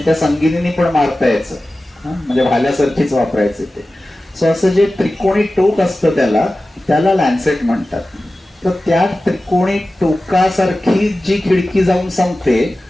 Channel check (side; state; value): both; normal; correlation 0.95